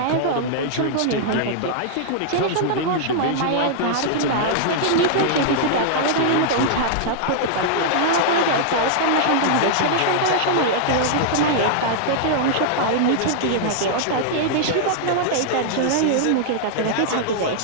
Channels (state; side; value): different; both; correlation -0.01